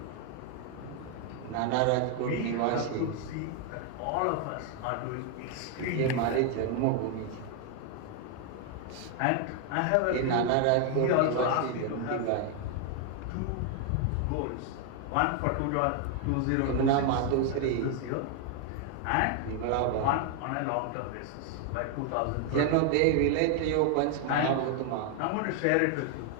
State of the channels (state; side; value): different; both; correlation 0.00